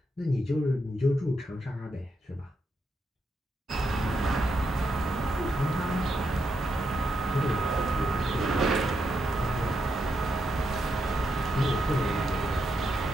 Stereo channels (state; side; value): normal; both; correlation 0.82